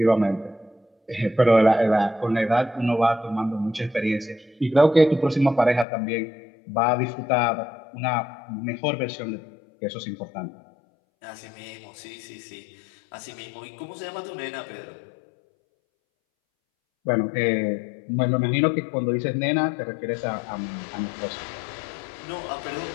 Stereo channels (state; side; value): drops out; right; at 5.9 s